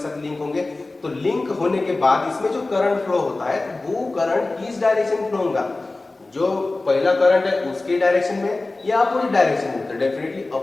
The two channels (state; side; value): quieter; right; 3.2 dB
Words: साथ लिंक होंगे, तो लिंक होने के बाद इसमें जो करंट फ्लो होता है तो वो करंट किस डायरेक्शन फ्लो होगा, जो पहला करंट है उसके डायरेक्शन में या अपोजिट डायरेक्शन में, तो डेफिनेटली